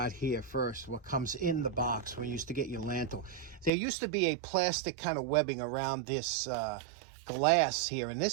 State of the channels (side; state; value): left; drops out; at 3.7 s